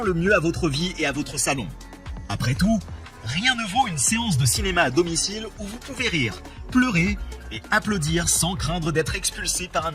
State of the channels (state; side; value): identical; both; correlation 1.00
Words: le mieux à votre vie et à votre salon. Après tout, rien ne vaut une séance de cinéma à domicile où vous pouvez rire, pleurer et applaudir sans craindre d'être expulsé par un